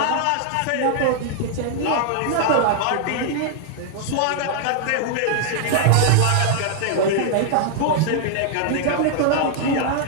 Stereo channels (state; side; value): different; both; correlation -0.01